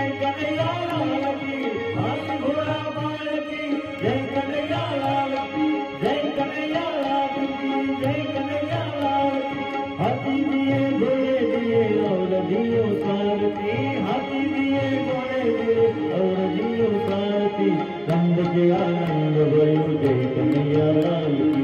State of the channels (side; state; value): both; identical; correlation 1.00